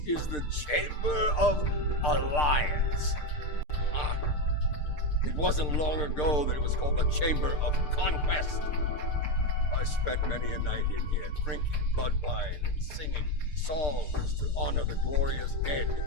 is the Chamber of Alliance. Ah, it wasn't long ago that it was called the Chamber of Conquest. I spent many a night in here, drinking blood wine and singing songs to honor the glorious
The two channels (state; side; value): late; right; 6.7 ms